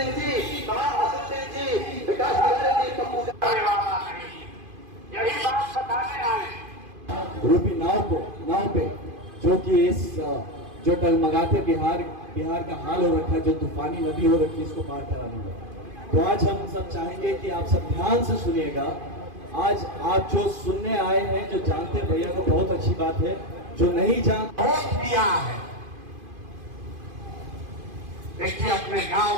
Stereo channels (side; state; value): left; late; 2.5 ms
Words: यही बात बताने आए रूपी नाव पे जो कि इस जो टगमगाते बिहार का हाल हो रखा है, जो तूफानी नदी हो रखी है, इसको पार कराने का। तो आज हम सब चाहेंगे कि आप सब ध्यान से सुनिएगा। आज आप जो सुनने आए हैं, जो जानते हैं भैया को बहुत अच्छी बात है, जो नहीं जानते वोट दिया है। देखिए अपने गांव